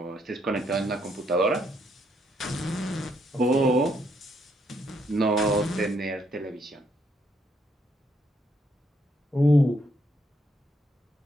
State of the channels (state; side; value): normal; both; correlation 0.73